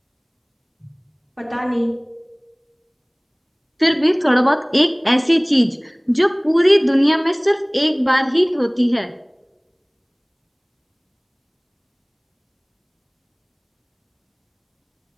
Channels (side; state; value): both; identical; correlation 1.00